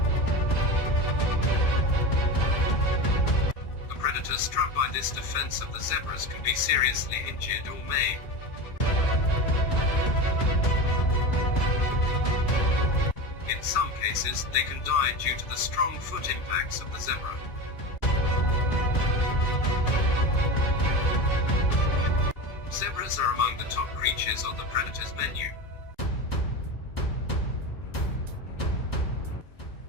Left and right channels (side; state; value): right; late; 2.4 ms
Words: A predator struck by this defense of the zebras can be seriously injured or maimed. In some cases, they can die due to the strong foot impacts of the zebra. Zebras are among the top creatures on the predator's menu.